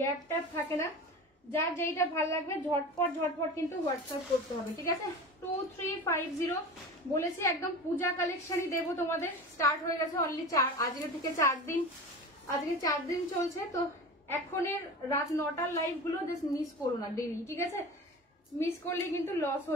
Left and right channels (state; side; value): normal; both; correlation 0.33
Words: গ্যাপ ট্যাপ থাকে না, যার যেইটা ভালো লাগবে ঝটপট ঝটপট কিন্তু হোয়াটসঅ্যাপ করতে হবে, ঠিক আছে? 2350 বলেছি, একদম পূজা কালেকশনই দেবো তোমাদের। স্টার্ট হয়ে গেছে অনলি আজকে থেকে 4 দিন, আজকে 4 দিন চলছে। তো এখনের রাত 9টার লাইভ গুলো জাস্ট মিস করো না ডেলি, ঠিক আছে? মিস করলে কিন্তু লস